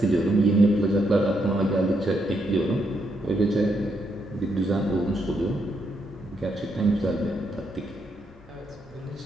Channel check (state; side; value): normal; both; correlation 0.78